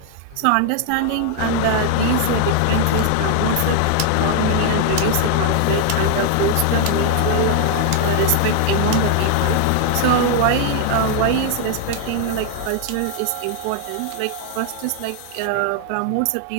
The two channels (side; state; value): both; different; correlation 0.00